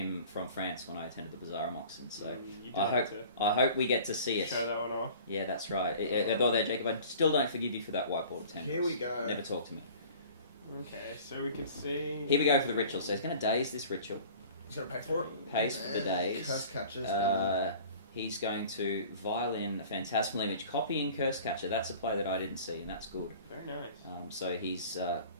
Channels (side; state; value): both; inverted; correlation -0.45